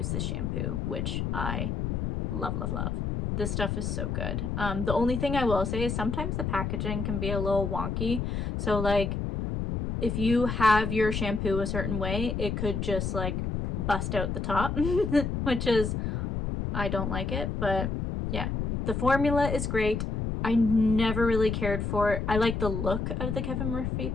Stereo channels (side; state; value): left; noise; rumble, 2 dB below the sound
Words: this shampoo, which I love, love, love. This stuff is so good. The only thing I will say is sometimes the packaging can be a little wonky. So like if you have your shampoo a certain way, it could just like bust out the top, which is, I don't like it, but yeah. The formula is great. I never really cared for it. I like the look of the Kevin Murphy